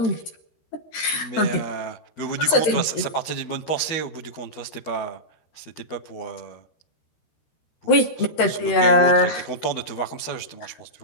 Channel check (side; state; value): right; late; 13 ms